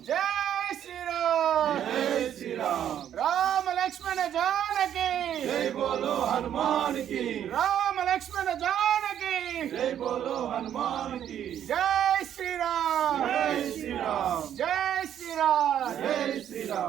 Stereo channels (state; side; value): quieter; left; 10.1 dB